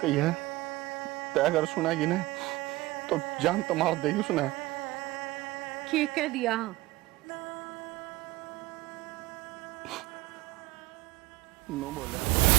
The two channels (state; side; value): quieter; left; 19.3 dB